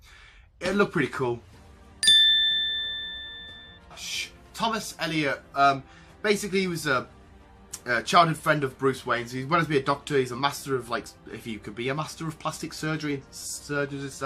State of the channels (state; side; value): identical; both; correlation 1.00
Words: it'd look pretty cool. Thomas Elliot, basically he was a childhood friend of Bruce Wayne's. He wanted to be a doctor. He's a master of, like, if you could be a master of plastic surgery and surgeons and